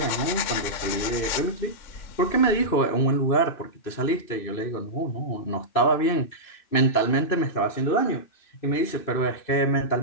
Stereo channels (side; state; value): right; late; 2.6 ms